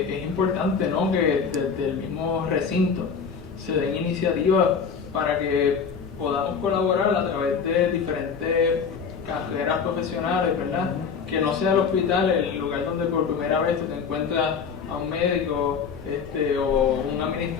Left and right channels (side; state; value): right; quieter; 6.1 dB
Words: es importante, ¿no?, que desde el mismo recinto se den iniciativas para que podamos colaborar a través de diferentes carreras profesionales, ¿verdad? Que no sea el hospital el lugar donde por primera vez tú te encuentras a un médico o un